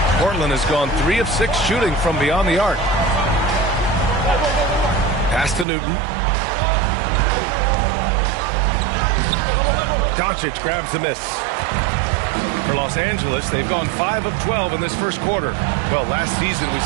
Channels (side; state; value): left; drops out; at 5.7 s